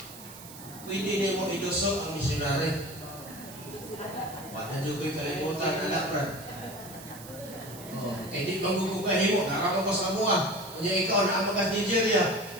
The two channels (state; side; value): noise; right; hiss, 16 dB below the sound